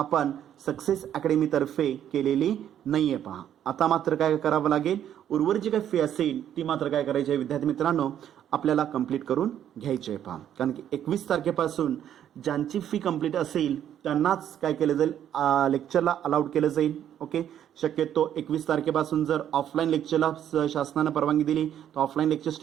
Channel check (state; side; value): quieter; left; 10.3 dB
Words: सक्सेस अकॅडमीतर्फे केलेली नाही आहे पहा. आता मात्र काय करावं लागेल, उर्वरित जी काही फी असेल ती मात्र काय करायची आहे विद्यार्थी मित्रांनो आपल्याला कंप्लीट करून घ्यायची आहे पहा. कारण की 21 तारखेपासून ज्यांची फी कंप्लीट असेल त्यांनाच काय केलं जाईल, लेक्चरला अलाउड केलं जाईल. ओके. शक्यतो 21 तारखेपासून जर ऑफलाईन लेक्चरला शासनानं परवानगी दिली तर ऑफलाईन लेक्चर